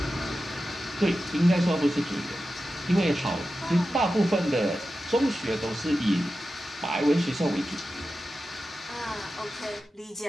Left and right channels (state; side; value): normal; both; correlation 0.92